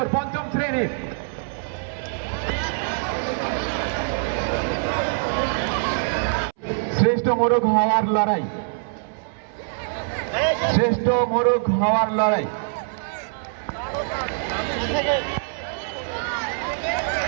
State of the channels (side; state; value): left; silent; 63 dB below the other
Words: পঞ্চম শ্রেণীর। শ্রেষ্ঠ মোরগ হওয়ার লড়াই, শ্রেষ্ঠ মোরগ হওয়ার লড়াই।